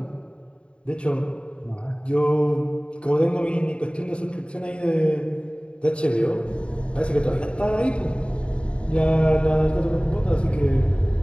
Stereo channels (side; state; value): right; late; 0.056 ms